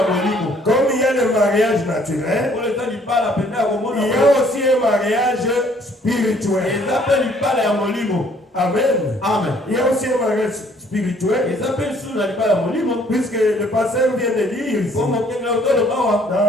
Comme il y a le mariage naturel, il y a aussi un mariage spirituel. Amen. Il y a aussi un mariage spirituel. Puisque le pasteur vient de dire ici, dans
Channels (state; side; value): normal; both; correlation 0.61